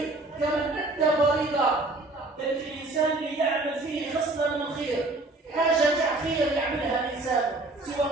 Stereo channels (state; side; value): quieter; left; 3.0 dB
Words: كمن أدى فريضة. بل الإنسان اللي يعمل فيه خصلة من الخير، حاجة خير يعملها الإنسان سوى